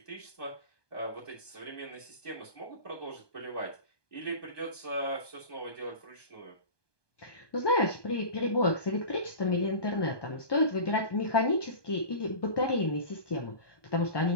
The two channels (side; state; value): right; late; 1.2 ms